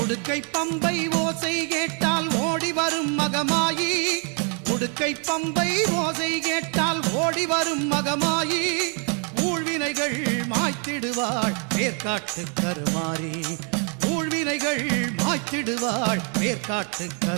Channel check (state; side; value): quieter; left; 38.4 dB